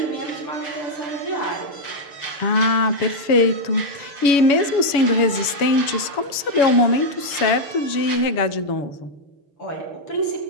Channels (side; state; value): right; late; 7.1 ms